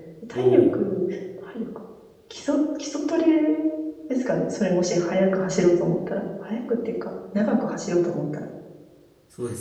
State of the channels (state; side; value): identical; both; correlation 1.00